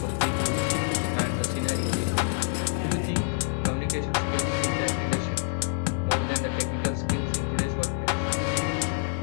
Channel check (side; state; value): right; silent; 60 dB below the other